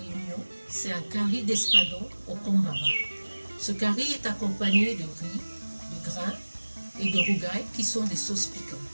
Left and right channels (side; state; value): both; inverted; correlation -1.00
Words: C'est un curry d'espadon au kombava. Ce curry est accompagné de riz, de grains et de rougail qui sont des sauces piquantes.